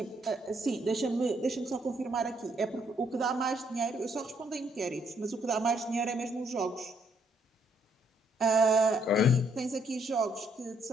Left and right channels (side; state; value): both; normal; correlation 0.70